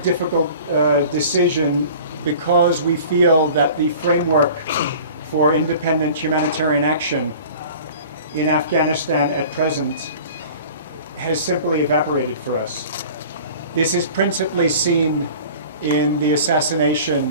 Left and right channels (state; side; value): inverted; both; correlation -0.43